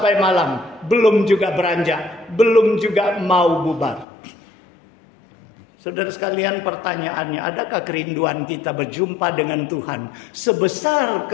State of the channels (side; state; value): right; drops out; at 4.0 s